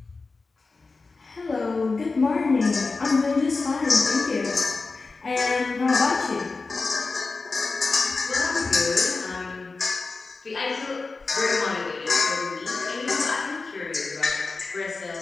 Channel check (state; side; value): quieter; right; 4.0 dB